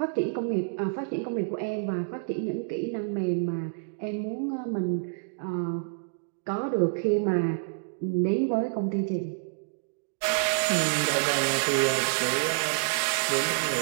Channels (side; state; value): left; silent; digital silence